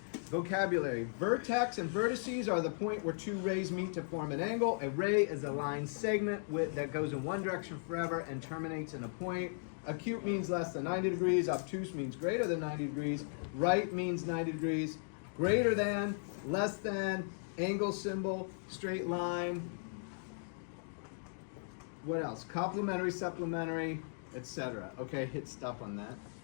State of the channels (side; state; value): right; silent; digital silence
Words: Vocabulary. Vertex and vertices are the point where two rays meet to form an angle. A ray is a line segment that goes in one direction forever and terminates in a point. Acute means less than 90 degrees. Obtuse means greater than 90 degrees. Right means 90 degrees. Greater than, less than, angle symbol, straight line. What else? Complementary, supplementary, etc. Okay, hit stop on that.